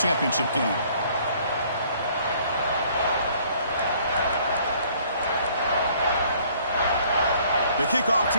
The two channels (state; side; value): inverted; both; correlation -0.59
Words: game. The kickoff